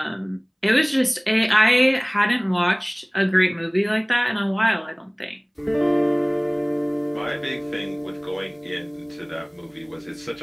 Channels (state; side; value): identical; both; correlation 1.00